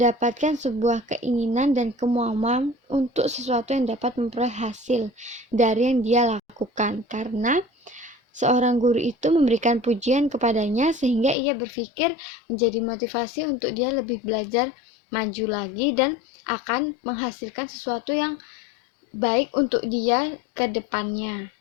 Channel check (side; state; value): right; drops out; at 11.4 s